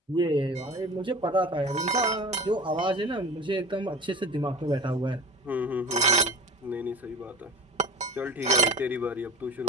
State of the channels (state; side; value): normal; both; correlation 0.36